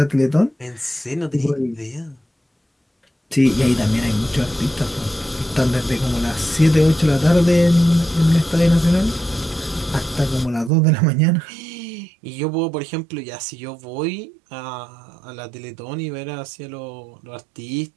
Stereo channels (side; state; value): left; drops out; at 10.7 s